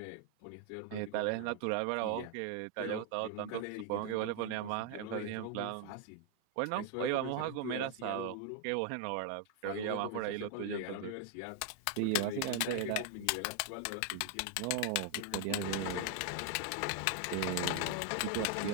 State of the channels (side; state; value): both; different; correlation 0.00